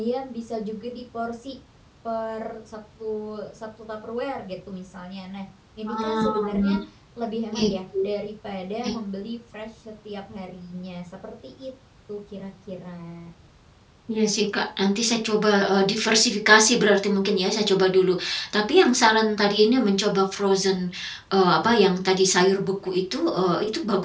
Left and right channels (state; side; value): identical; both; correlation 1.00